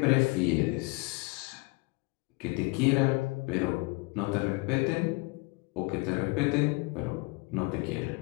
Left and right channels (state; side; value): quieter; right; 26.8 dB